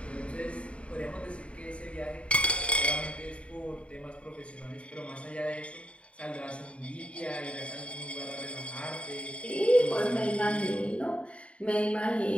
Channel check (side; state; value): right; late; 0.061 ms